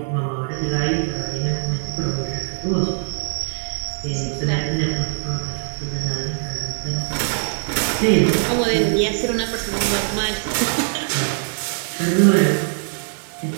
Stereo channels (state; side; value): silent; left; digital silence